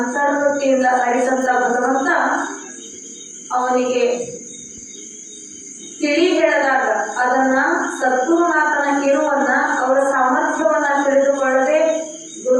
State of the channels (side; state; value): both; identical; correlation 1.00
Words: ಅರಿಸಂತ ಭಗವಂತ ಅವನಿಗೆ ತಿಳಿ ಹೇಳಿದಾಗ ಅದನ್ನ ಸದ್ಗುರುನಾಥನ ಕಿರುವನ್ನ ಅವರ ಸಾಮರ್ಥ್ಯವನ್ನ ತಿಳಿದುಕೊಳ್ಳದೆ